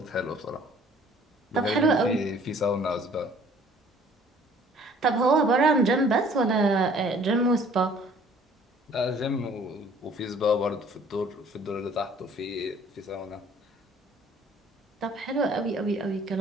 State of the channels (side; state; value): both; normal; correlation 0.55